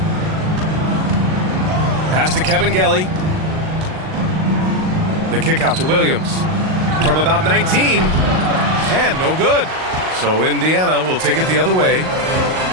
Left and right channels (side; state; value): left; late; 38 ms